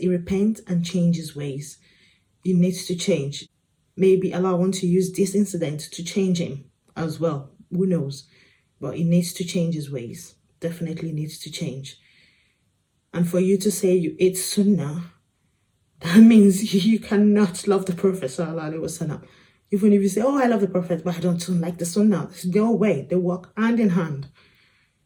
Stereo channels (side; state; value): both; identical; correlation 1.00